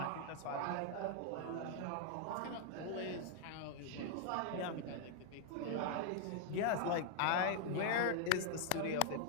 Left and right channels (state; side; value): different; both; correlation 0.00